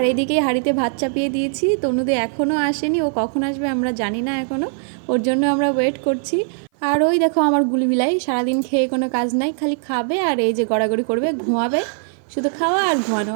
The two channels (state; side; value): silent; left; 56 dB below the other